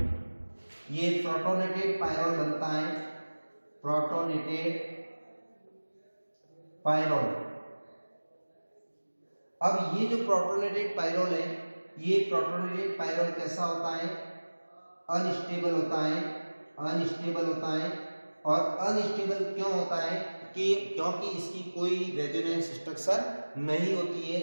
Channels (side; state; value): both; inverted; correlation -1.00